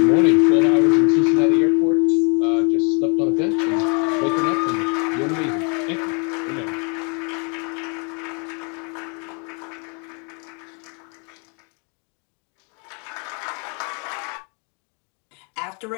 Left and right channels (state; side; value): quieter; right; 35.5 dB